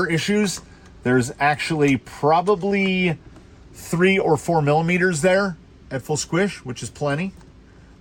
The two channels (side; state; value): both; identical; correlation 1.00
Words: issues. There's actually probably 3 or 4 millimeters there at full squish, which is plenty.